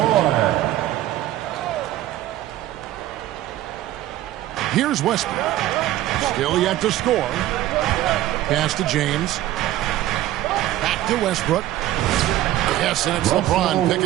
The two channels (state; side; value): quieter; left; 14.3 dB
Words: Here's Westbrook. Still yet to score. Pass to James. Back to Westbrook. Yes, and it's LeBron